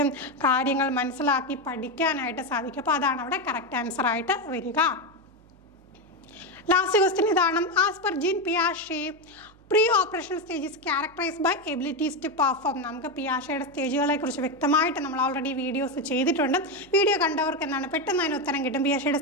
കാര്യങ്ങൾ മനസ്സിലാക്കി പഠിക്കാനായിട്ട് സാധിക്കും. അപ്പോൾ അതാണ് അവിടെ കറക്റ്റ് ആൻസർ ആയിട്ട് വരിക. ലാസ്റ്റ് ക്വസ്റ്റ്യൻ ഇതാണ്. ആസ് പെർ ജീൻ പിയാഷെ pre operational stage is characterised by abilities to perform. നമുക്ക് പിയാഷയുടെ സ്റ്റേജുകളെ കുറിച്ച് വ്യക്തമായിട്ട് നമ്മൾ ഓൾറെഡി വീഡിയോസ് ചെയ്തിട്ടുണ്ട്. വീഡിയോ കണ്ടവർക്ക് പെട്ടെന്ന് അതിന് ഉത്തരം കിട്ടും. പിയാഷയുടെ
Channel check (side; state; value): right; noise; hum, 27 dB below the sound